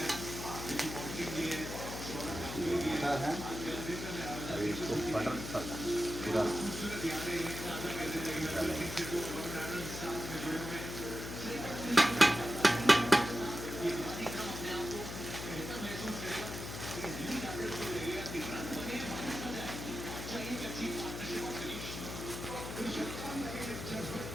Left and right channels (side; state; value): left; noise; hum, 7 dB below the sound